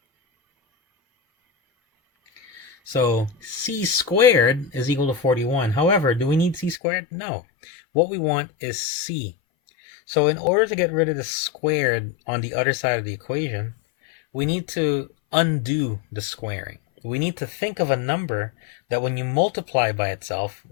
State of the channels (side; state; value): right; drops out; at 6.8 s